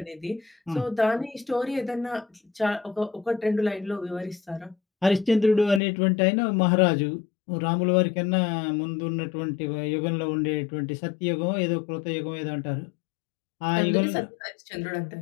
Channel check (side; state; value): right; drops out; at 5.8 s